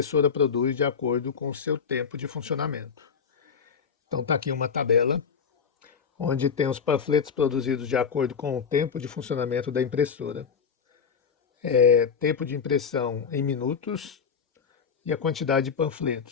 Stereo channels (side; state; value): right; quieter; 6.4 dB